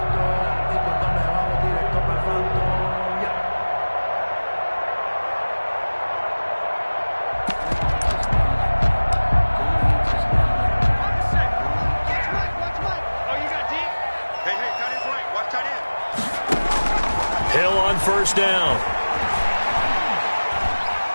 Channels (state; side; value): inverted; both; correlation -1.00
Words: Hill on first down.